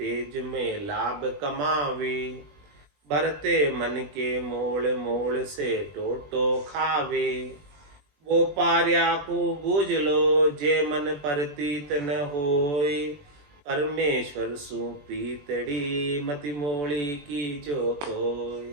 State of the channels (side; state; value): left; late; 21 ms